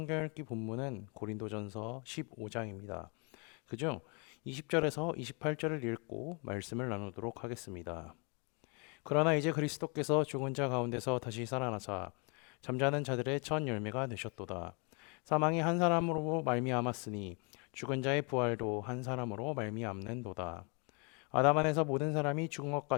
읽기 본문은 고린도전서 15장입니다. 그중 20절에서 28절을 읽고 말씀을 나누도록 하겠습니다. 그러나 이제 그리스도께서 죽은 자 가운데서 다시 살아나사 잠자는 자들의 첫 열매가 되셨도다. 사망이 한 사람으로 말미암았으니 죽은 자의 부활도 한 사람으로 말미암는도다. 아담 안에서 모든 사람이 죽은 것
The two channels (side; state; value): right; quieter; 34.8 dB